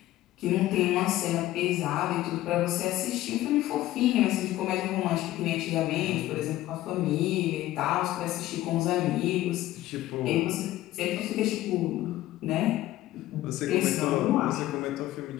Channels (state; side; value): quieter; right; 15.3 dB